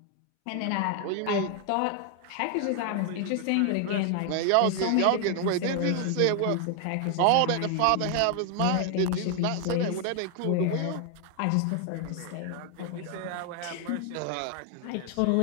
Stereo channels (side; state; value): both; different; correlation 0.00